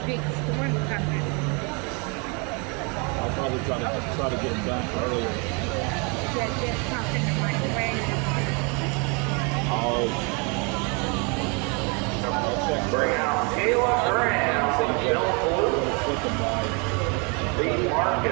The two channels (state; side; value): quieter; left; 32.7 dB